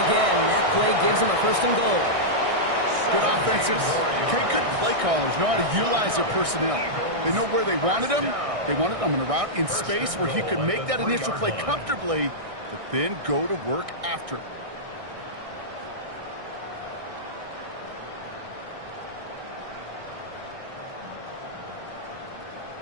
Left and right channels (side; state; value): left; late; 1.6 ms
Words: again. That play gives him a 1st and goal. Good offensive. Okay, good play callers know how to utilize their personnel. They know where they wanted them. They wanted them in a route in space where he could make that initial play comfortably, but then go to work after.